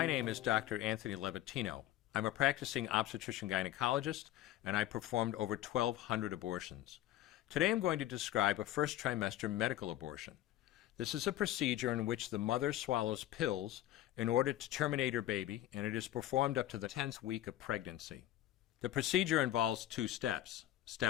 name is Dr. Anthony Levatino. I'm a practicing obstetrician-gynecologist, and I performed over 1,200 abortions. Today I'm going to describe a first trimester medical abortion. This is a procedure in which the mother swallows pills in order to terminate her baby, and it is performed up to the 10th week of pregnancy. The procedure involves 2 steps.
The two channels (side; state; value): right; quieter; 13.5 dB